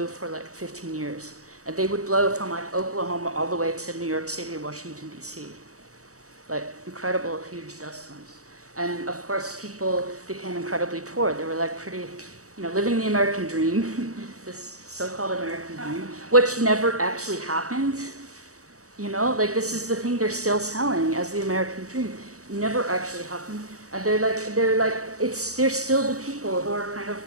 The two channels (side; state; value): left; late; 0.65 ms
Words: for like 15 years. And they would blow from like Oklahoma all the way to New York City, Washington, D.C. Like incredible, huge dust storms. And of course, people became incredibly poor. They were like pretty, you know, living the American dream, this so-called American dream, which never actually happened. You know, like this is the thing they're still selling as the American dream. Never actually happened. And they're still the people who are kind of,